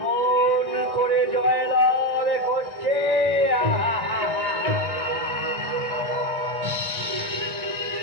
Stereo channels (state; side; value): late; left; 1.6 ms